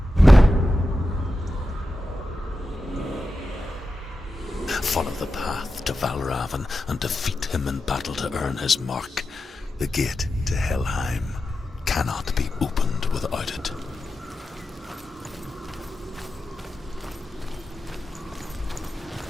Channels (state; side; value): normal; both; correlation 0.91